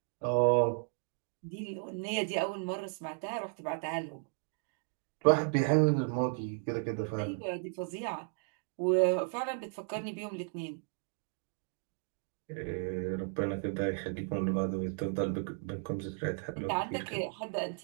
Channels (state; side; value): silent; left; 55 dB below the other